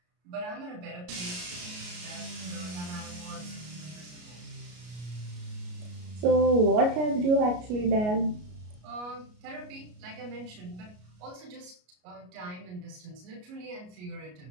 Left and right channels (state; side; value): late; left; 33 ms